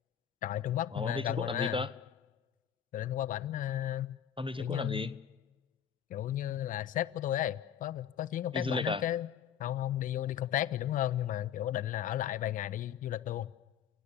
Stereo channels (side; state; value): right; quieter; 9.1 dB